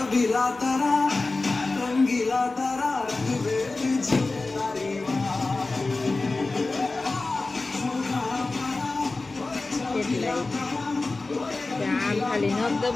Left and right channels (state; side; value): quieter; right; 3.4 dB